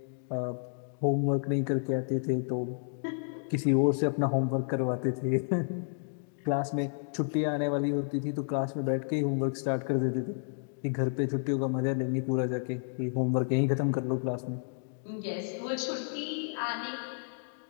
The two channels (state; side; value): silent; right; digital silence